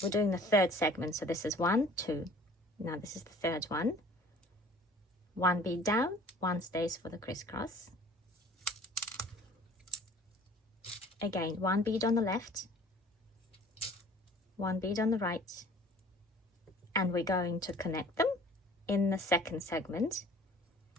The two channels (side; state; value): both; normal; correlation 0.50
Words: we're doing the third segment. So this is 1, 2. Now this is the third one. One bead down, one stays for the crisscross. Again, one bead on the left, one bead on the right, and we're going to connect them in the second segment